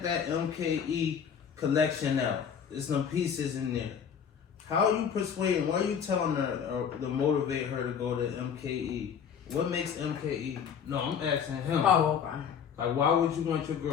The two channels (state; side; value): quieter; right; 7.4 dB